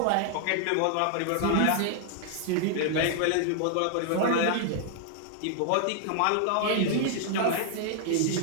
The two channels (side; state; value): both; different; correlation 0.00